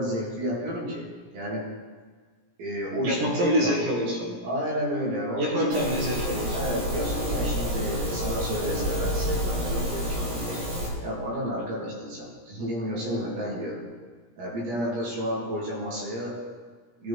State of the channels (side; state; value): left; late; 17 ms